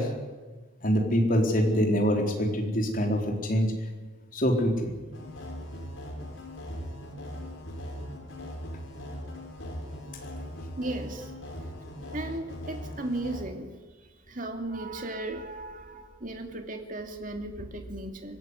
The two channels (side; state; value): both; normal; correlation 0.66